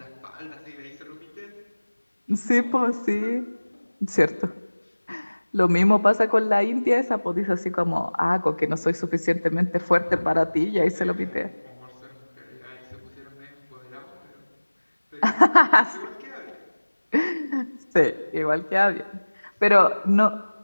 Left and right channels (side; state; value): both; inverted; correlation -1.00